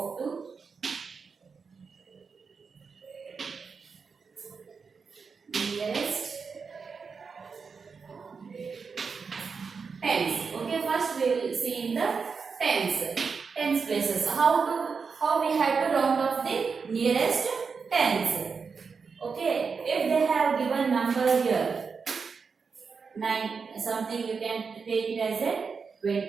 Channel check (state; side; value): quieter; left; 5.3 dB